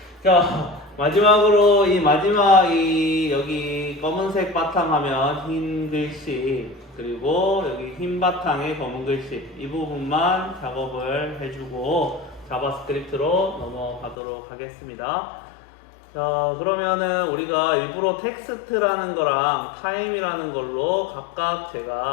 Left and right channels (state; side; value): drops out; right; at 14.2 s